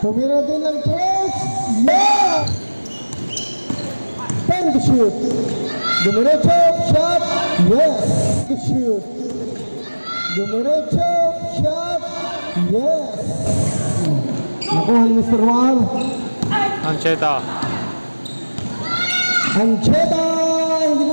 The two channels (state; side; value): inverted; both; correlation -1.00